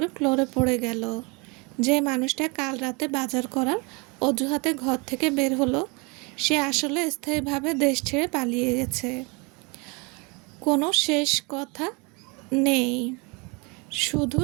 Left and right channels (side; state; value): left; quieter; 29.3 dB